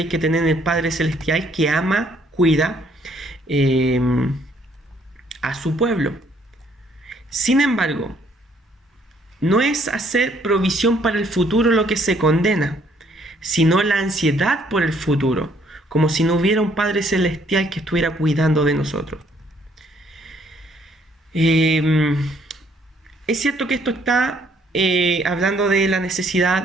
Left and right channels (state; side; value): normal; both; correlation 0.66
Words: hay que tener en el Padre Celestial, que ama, cuida a su pueblo. Sin embargo, no es hacer provisión para el futuro lo que se condena, sino la ansiedad por el futuro, como si no hubiera un Padre Celestial que estuviera cuidando de nosotros. Es cierto que esto está hablando de la